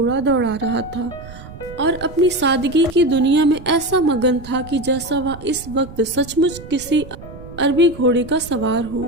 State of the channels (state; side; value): noise; right; rumble, 16 dB below the sound